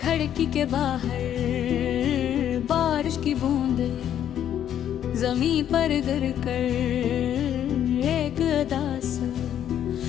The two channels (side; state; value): right; quieter; 10.2 dB